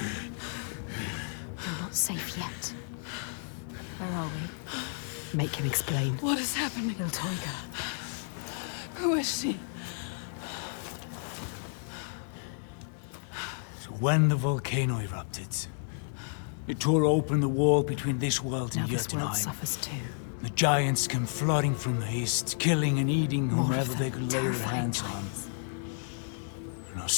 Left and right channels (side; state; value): right; silent; digital silence